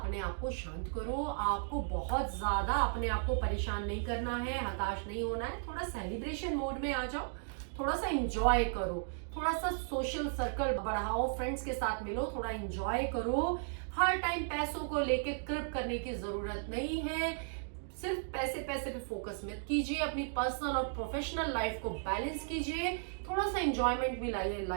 आप को शांत करो। आपको बहुत ज्यादा अपने आप को परेशान नहीं करना है, हताश नहीं होना है। थोड़ा सेलिब्रेशन मोड में आ जाओ, थोड़ा सा एंजॉय करो, थोड़ा सा सोशल सर्कल बढ़ाओ, फ्रेंड्स के साथ मिलो, थोड़ा एंजॉय करो। हर टाइम पैसों को लेके कृप करने की जरूरत नहीं है। सिर्फ पैसे पे फोकस मत कीजिए। अपनी पर्सनल और प्रोफेशनल लाइफ को बैलेंस कीजिए। थोड़ा सा एंजॉयमेंट भी लाइए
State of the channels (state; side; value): silent; left; digital silence